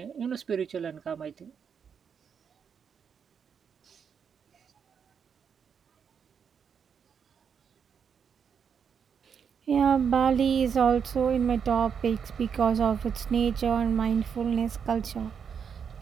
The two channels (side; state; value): left; quieter; 7.1 dB